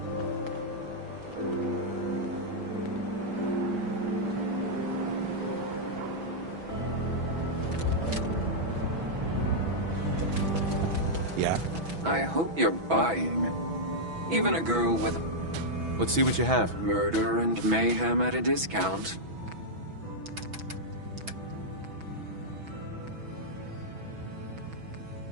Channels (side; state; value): left; late; 6.1 ms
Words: Yeah. I hope you're buying. Even a girl with Let's see what you have. murder and mayhem at a discount.